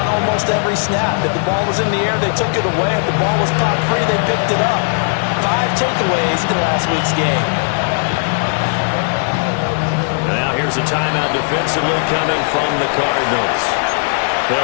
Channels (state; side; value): silent; right; digital silence